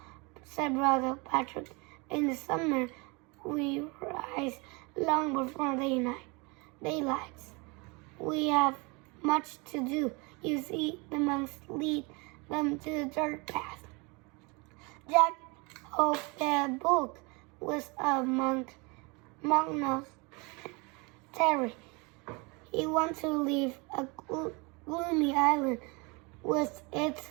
said Brother Patrick. In the summer, we rise long before daylight. We have much to do. You see, the monks lead them to the dirt path. Jack hoped their book was a monastery. He wanted to leave a gloomy island with its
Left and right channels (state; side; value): quieter; left; 28.6 dB